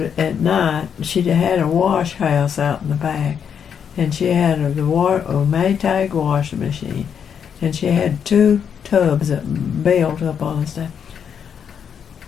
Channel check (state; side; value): quieter; right; 7.6 dB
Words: night she had a wash house out in the back, and she had a Maytag washing machine, and she had 2 tubs that built up on the stuff.